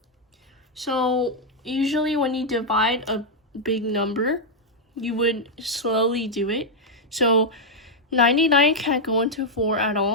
So usually when you divide a big number, you would slowly do it. So 99 can't go into 4 at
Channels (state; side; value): normal; both; correlation -0.02